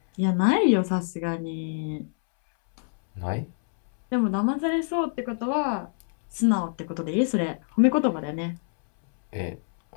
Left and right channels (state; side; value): silent; right; 61 dB below the other